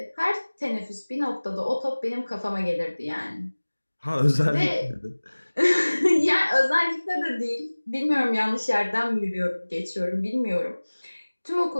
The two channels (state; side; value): inverted; both; correlation -1.00